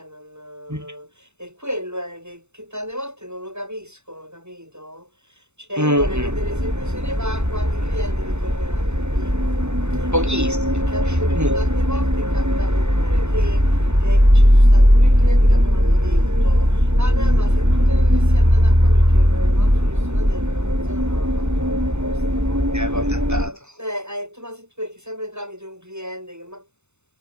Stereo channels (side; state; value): left; late; 0.82 ms